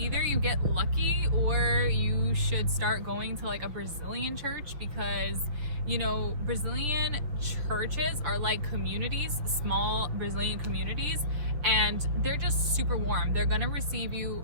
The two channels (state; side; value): late; left; 6.4 ms